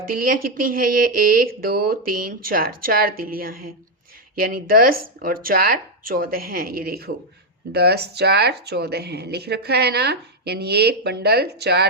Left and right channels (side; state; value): both; normal; correlation 0.02